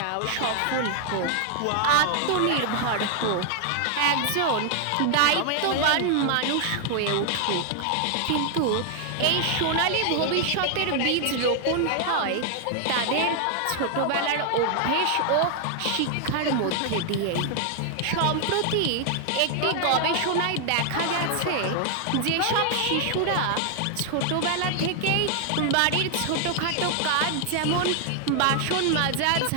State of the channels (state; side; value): different; both; correlation 0.00